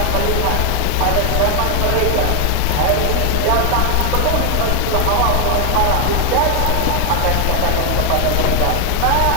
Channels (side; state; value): both; different; correlation 0.00